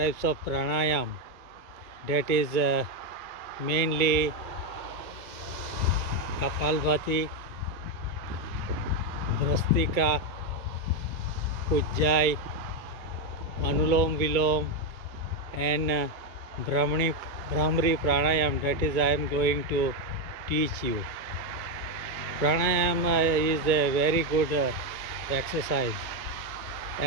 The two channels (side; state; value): left; late; 2.2 ms